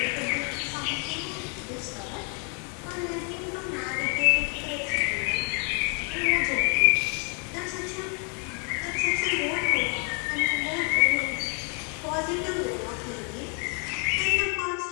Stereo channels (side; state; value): right; quieter; 38.3 dB